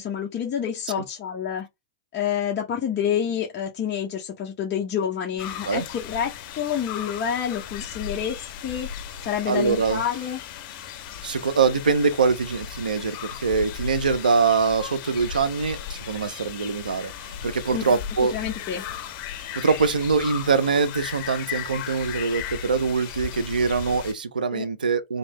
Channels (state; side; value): inverted; both; correlation -0.46